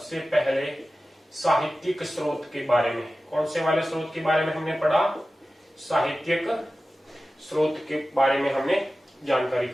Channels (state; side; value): normal; both; correlation 0.95